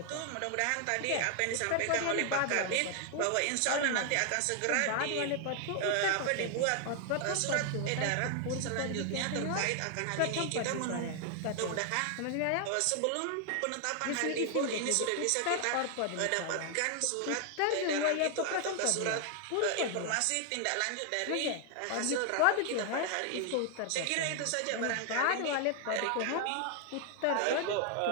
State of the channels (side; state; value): both; different; correlation 0.00